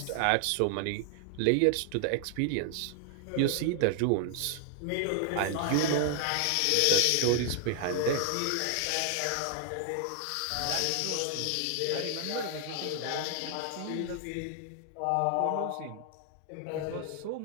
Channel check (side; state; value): both; different; correlation 0.00